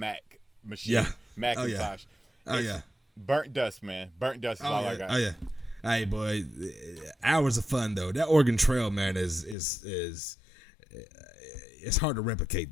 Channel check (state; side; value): drops out; right; at 9.6 s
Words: machine, Macintosh. Oh yeah. Burnt dust, man. Burnt dust is all I got. Oh yeah. Hey boy, hours of fun though. That Oregon Trail, man, is it's hard to replicate